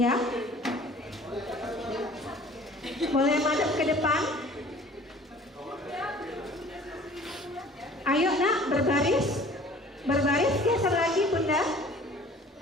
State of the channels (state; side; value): normal; both; correlation 0.49